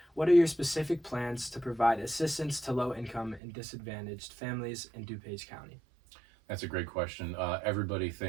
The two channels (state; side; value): drops out; left; at 3.4 s